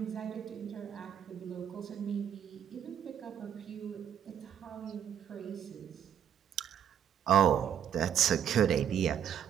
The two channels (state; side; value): quieter; left; 9.2 dB